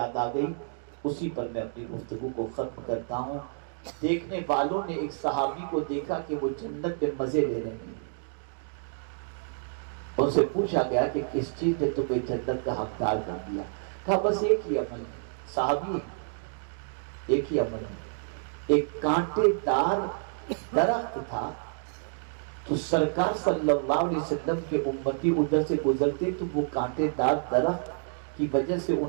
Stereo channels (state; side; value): silent; left; digital silence